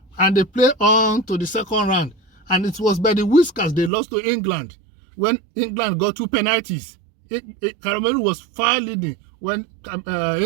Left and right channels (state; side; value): drops out; left; at 3.9 s